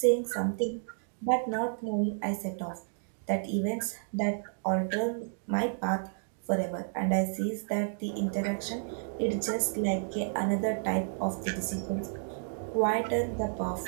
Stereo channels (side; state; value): left; silent; 57 dB below the other